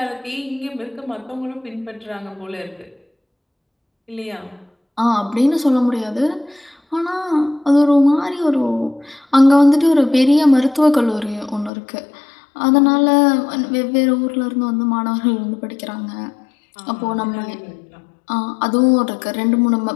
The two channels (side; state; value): right; drops out; at 11.7 s